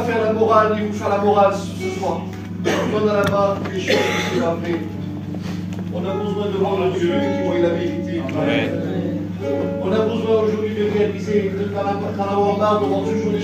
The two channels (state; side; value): identical; both; correlation 1.00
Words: faire la morale, ni vous faire la morale ce soir. On a là-bas des choses qui sont vraies. On a besoin de voir le Dieu qui voit la vérité. On a besoin aujourd'hui de réaliser, d'en avoir marre de voir toujours les